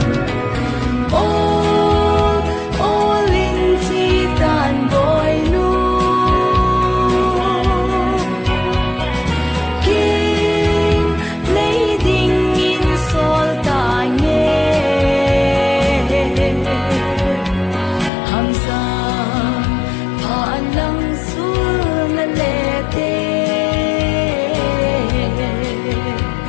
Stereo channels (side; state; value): right; drops out; at 18.1 s